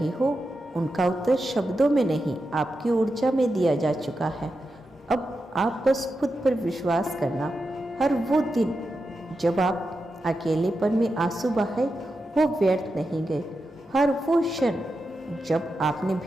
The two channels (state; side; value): normal; both; correlation 0.89